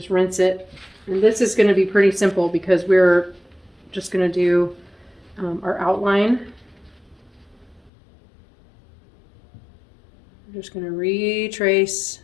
rinse it. And this is going to be pretty simple because we're just going to do our outline. We're just going to retrace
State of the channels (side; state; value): right; drops out; at 7.9 s